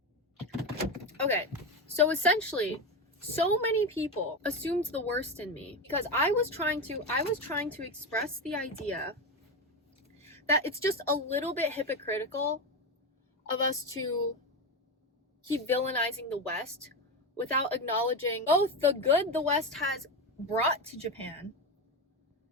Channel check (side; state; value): both; normal; correlation 0.16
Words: Okay, so essentially, so many people assumed the worst in me because I was trying to express the idea that it's just a little bit hypocritical of us to keep villainizing the West without acknowledging both the good the West has brought to Japan